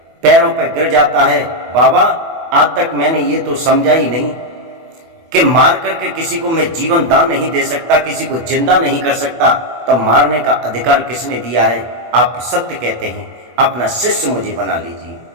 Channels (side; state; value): left; late; 24 ms